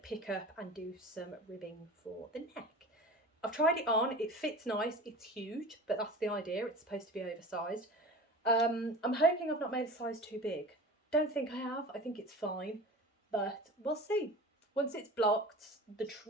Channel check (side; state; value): both; normal; correlation 0.36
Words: pick up and do some ribbing for the neck. I've tried it on, it fits nice, it's huge, but that's the idea, it's supposed to be oversized. I'm hoping I've not made a size too big. Don't think I have, I think it's fine, but we'll see. Once it's blocked, the